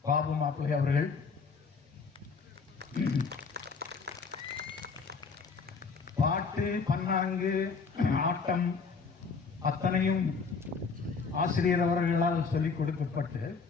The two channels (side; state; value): right; quieter; 5.0 dB